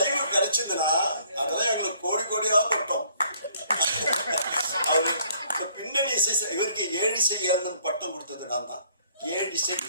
கிடைச்சதுன்னா அதெல்லாம் எங்களுக்கு கோடியாக பட்டோம். அவரு பின்னணி இசை இவருக்கு ஏழிசை ஏந்தன் பட்டம் கொடுத்தது நான் தான். ஏழிசை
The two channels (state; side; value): inverted; both; correlation -0.62